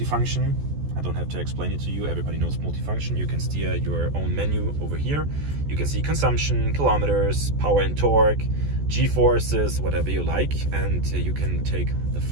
I don't have to explain it to you. Everybody knows multifunction. You can steer your own menu over here. You can see consumption, kilometers, power and torque, G-forces, whatever you like. And you can take the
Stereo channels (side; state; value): left; late; 14 ms